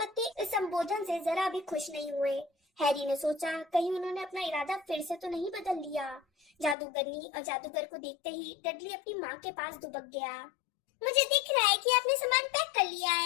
इस संबोधन से जरा भी खुश नहीं हुए। हैरी ने सोचा, कहीं उन्होंने अपना इरादा फिर से तो नहीं बदल लिया। जादूगरनी और जादूगर को देखते ही डडली अपनी माँ के पास दुबक गया। मुझे दिख रहा है कि आपने सामान पैक कर लिया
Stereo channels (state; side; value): drops out; right; at 6.8 s